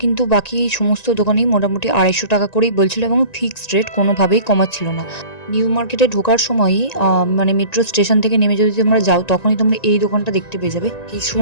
কিন্তু বাকি সমস্ত দোকানেই মোটামুটি 250 টাকা করেই বলছিল, এবং ফিক্সড রেট, কোনোভাবেই কমাচ্ছিল না। নিউ মার্কেটে ঢোকার সময়ই মানে মেট্রো স্টেশন থেকে নেমে যদি তোমরা যাও, তখনই তোমরা এই দোকানটা দেখতে পেয়ে যাবে।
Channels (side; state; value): right; late; 1.9 ms